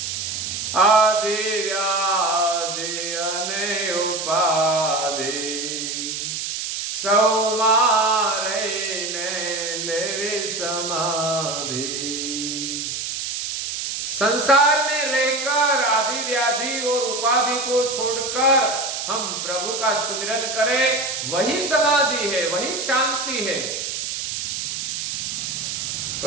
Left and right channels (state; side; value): noise; right; hiss, 4 dB below the sound